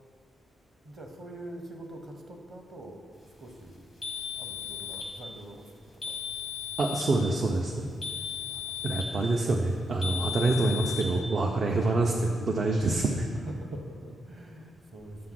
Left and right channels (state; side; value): normal; both; correlation 0.80